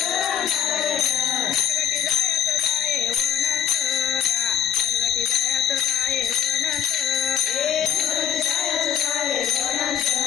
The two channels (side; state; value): right; quieter; 9.0 dB